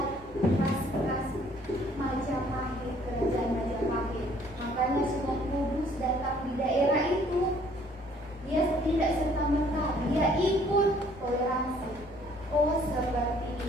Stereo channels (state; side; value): normal; both; correlation 0.60